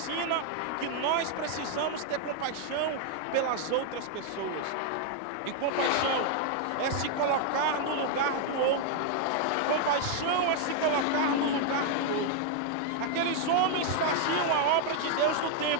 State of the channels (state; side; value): different; both; correlation 0.00